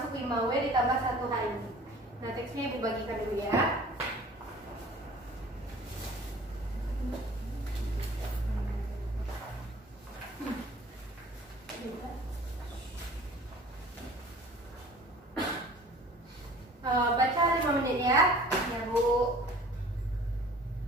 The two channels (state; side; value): normal; both; correlation 0.47